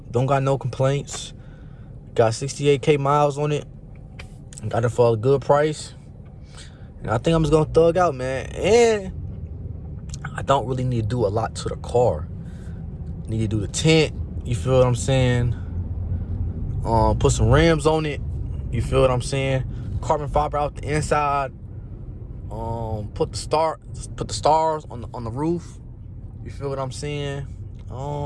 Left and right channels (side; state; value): both; identical; correlation 1.00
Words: Don't got no complaints. Got 68K miles on it. Got it for a good price. And I think I'm just going to thug out, man. And I don't really need to do a lot to the car. Need to do the tint. You feel what I'm saying? Put some rims on it. You feel what I'm saying? Carbon fiber out the inside. Put the stars on the roof. You feel what I'm saying?